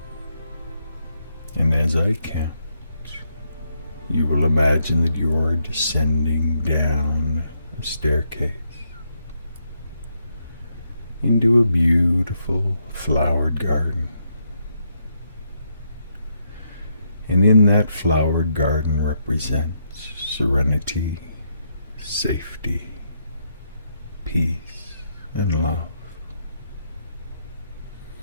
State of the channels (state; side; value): inverted; both; correlation -0.78